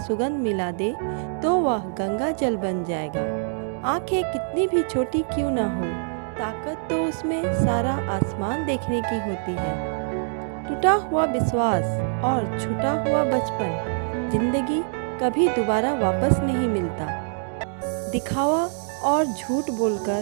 सुगंध मिला दे तो वह गंगा जल बन जाएगा। आंखें कितनी भी छोटी क्यों ना हो, ताकत तो उसमें सारा आसमान देखने की होती है। टूटा हुआ विश्वास और छूटा हुआ बचपन जिंदगी कभी दोबारा वापस नहीं मिलता। दिखावा और झूठ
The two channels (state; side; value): silent; left; digital silence